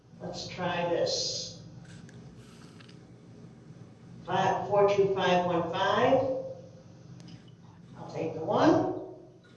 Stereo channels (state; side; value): identical; both; correlation 1.00